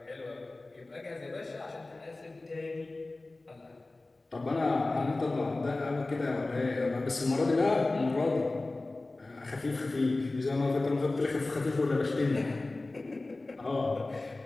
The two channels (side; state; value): right; quieter; 3.1 dB